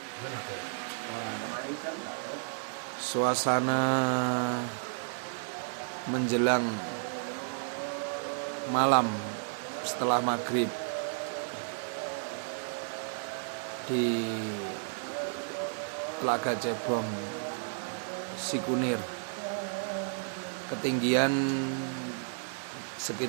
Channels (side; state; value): left; silent; digital silence